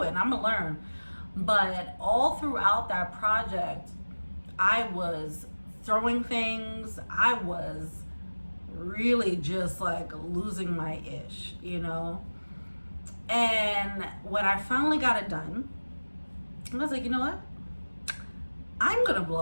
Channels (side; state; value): both; inverted; correlation -1.00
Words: it, and I'm gonna learn. But all throughout that project, I was throwing things. I was really just like losing my ish, you know? And when I finally got it done, I was like, you know what? I'm gonna blow